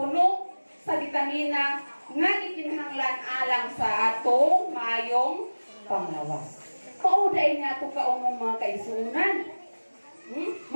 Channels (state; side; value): inverted; both; correlation -1.00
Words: sa bitamina, nga gikinahanglan alang sa atong maayong panglawas. Pauday nga ito kaong mga kaisunan.